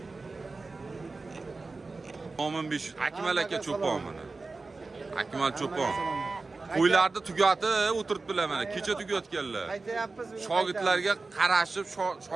Mo'min besh Akmal aka cho'pon mana. Akmal cho'pon. Qo'ylarni tugatib o'tiribdilar mana. Kecha tugatganlar. Shogirdlarga qarashib,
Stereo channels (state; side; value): quieter; left; 3.7 dB